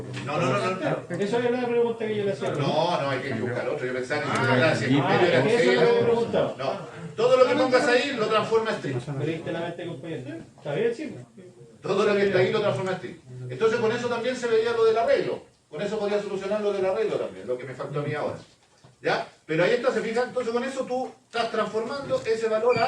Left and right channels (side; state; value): both; identical; correlation 1.00